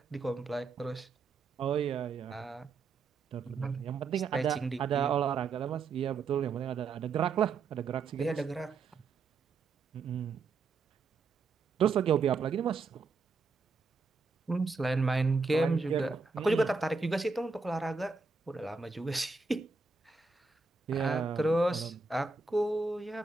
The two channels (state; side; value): quieter; left; 4.4 dB